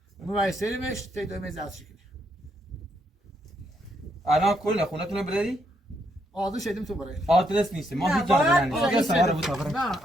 مویسریمش تی دوی میز از شکلی الان کل خونتون رو بردی؟ آدرس شدیم تو برای آدرس نیست ما هیچ جا نمیدونیم آدرس سوار بود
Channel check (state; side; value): normal; both; correlation 0.76